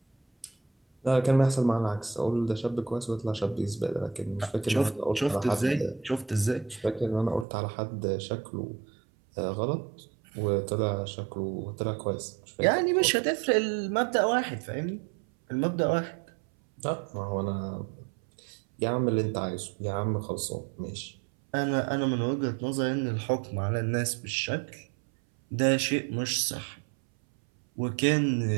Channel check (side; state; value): left; drops out; at 7.5 s